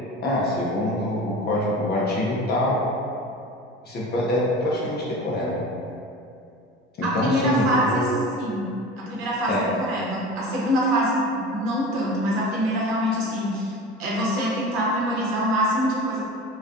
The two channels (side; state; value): both; normal; correlation 0.35